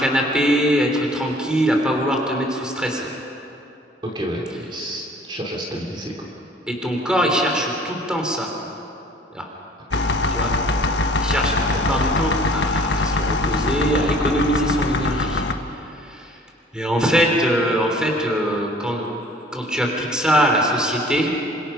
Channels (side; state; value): both; normal; correlation 0.52